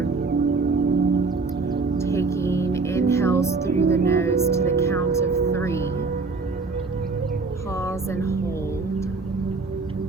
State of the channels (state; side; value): quieter; left; 4.1 dB